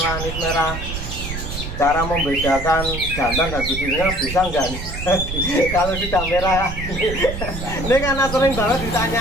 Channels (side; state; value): right; noise; rumble, 7 dB below the sound